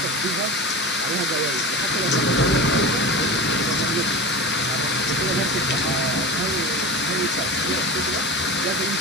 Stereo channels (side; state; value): right; noise; hiss, 6 dB below the sound